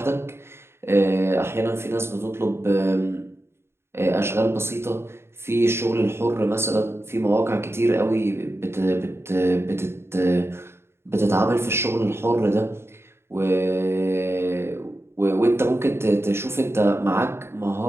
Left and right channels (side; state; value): left; late; 0.12 ms